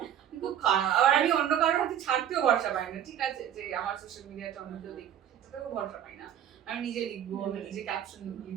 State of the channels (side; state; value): left; quieter; 10.1 dB